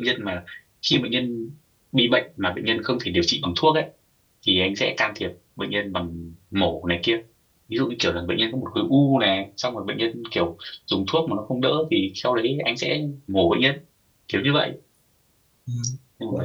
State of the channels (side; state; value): both; identical; correlation 1.00